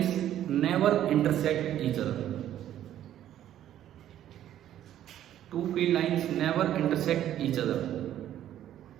never intersect each other. Two field lines never intersect each other.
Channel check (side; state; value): left; quieter; 11.7 dB